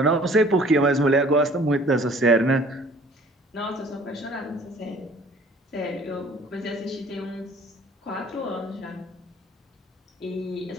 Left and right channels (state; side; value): normal; both; correlation 0.53